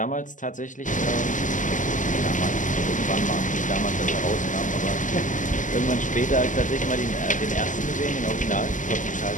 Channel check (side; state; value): right; late; 0.37 ms